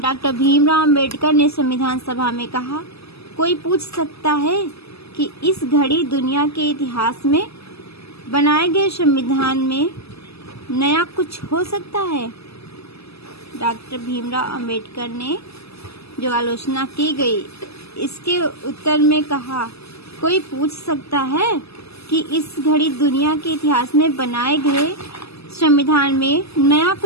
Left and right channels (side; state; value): right; late; 0.79 ms